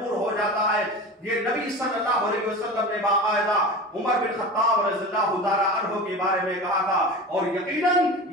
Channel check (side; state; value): both; normal; correlation 0.31